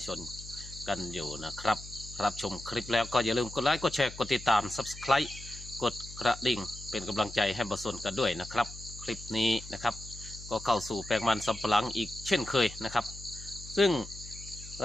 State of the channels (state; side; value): noise; left; hum, 15 dB below the sound